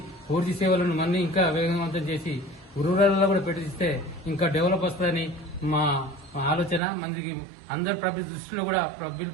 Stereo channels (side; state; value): left; drops out; at 6.8 s